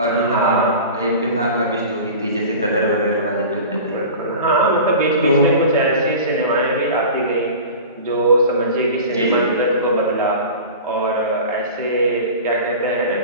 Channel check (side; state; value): both; inverted; correlation -0.35